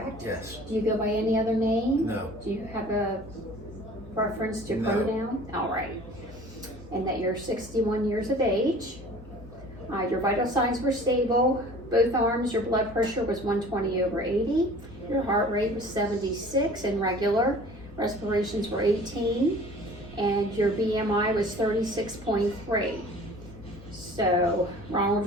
Yes. Do you go by any other name? No. Do you have a preference to No. pronoun? All right. And that you're 61 years of age. Your vital signs were stable. Both arms, your blood pressure was 120/80. Your heart rate was 76 and regular. Respirations were 18. And your BMI was 36.3. So,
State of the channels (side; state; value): both; normal; correlation 0.46